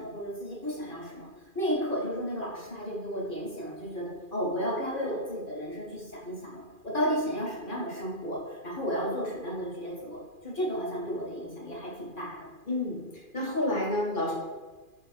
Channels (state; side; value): late; left; 2.4 ms